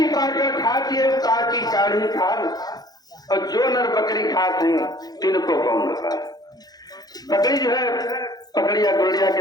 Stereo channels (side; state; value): right; late; 0.19 ms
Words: काटकर खाती है काटी काढ़ी खाल, और जो नर बकरी खाते हैं तिनको कौन खा। बकरी जो है पकड़िया गुड़िया के